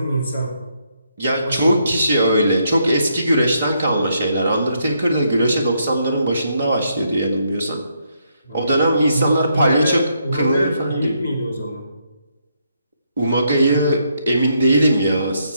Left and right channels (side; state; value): both; inverted; correlation -0.76